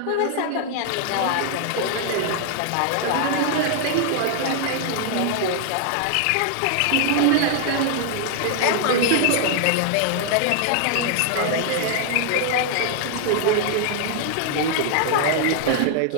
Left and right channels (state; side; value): different; both; correlation 0.00